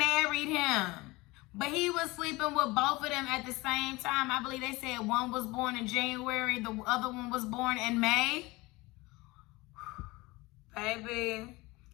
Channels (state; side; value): quieter; right; 22.1 dB